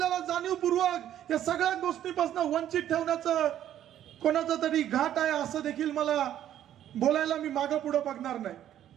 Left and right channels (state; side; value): quieter; left; 11.3 dB